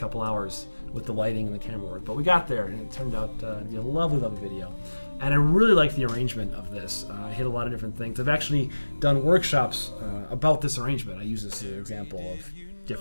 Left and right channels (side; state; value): both; inverted; correlation -1.00